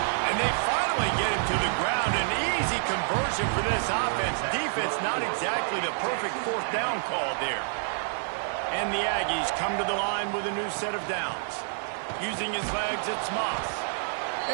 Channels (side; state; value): left; silent; digital silence